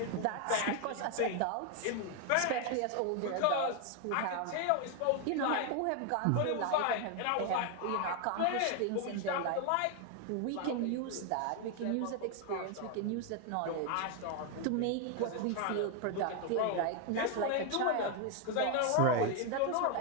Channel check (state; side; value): different; both; correlation 0.01